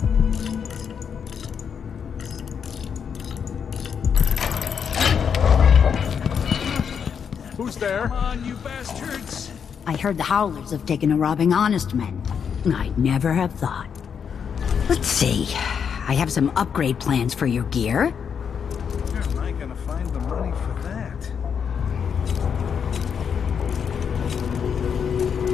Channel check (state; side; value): quieter; right; 7.1 dB